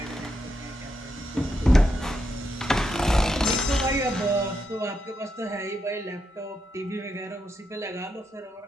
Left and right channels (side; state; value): both; normal; correlation 0.83